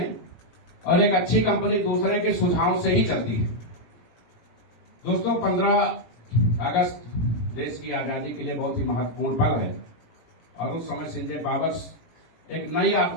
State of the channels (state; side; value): late; right; 18 ms